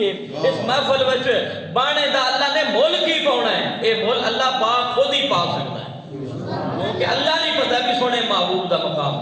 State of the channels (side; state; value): both; identical; correlation 1.00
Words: اس محفل وچ بانے دا اللہ نے ملک ہی پاؤنا ہے اے ملک اللہ پاک خود ہی پا سکتا ہے کیونکہ اللہ نہیں پتہ کہ سونے محبوب دا مقام